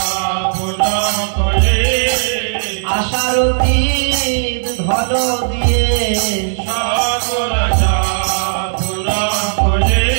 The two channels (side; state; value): left; silent; digital silence